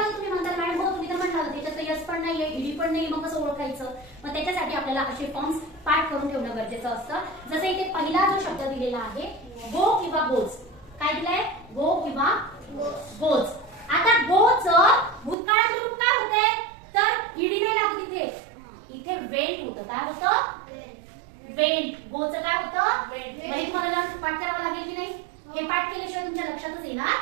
तुम्ही म्हणता मॅडम हो तुम्ही तर म्हणाल त्याच्यात यस पण नाहीये ईडी पण नाही मग कसं ओळखायचं मग त्याच्यासाठी आपल्याला असे फॉर्म्स पाठ करून ठेवणं गरजेचं असतं जसं इथे पहिला जो शब्द दिलेला आहे गो किंवा गोज काय दिलंय गो किंवा गोज आता गोचं भूतकाळात रूप काय होतंय तर ईडी नाही लागत इथे वेंट होतं काय होतं वेंट गोचं काय होतं वेंट तुम्हाला पाठ करावं लागेल की नाही हे पाठ केल्याशिवाय तुमच्या लक्षातच येणार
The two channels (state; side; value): drops out; left; at 15.4 s